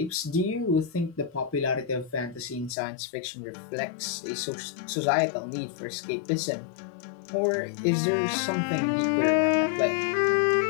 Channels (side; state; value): right; drops out; at 2.8 s